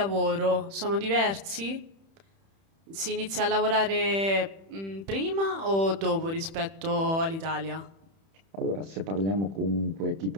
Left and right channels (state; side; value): late; left; 31 ms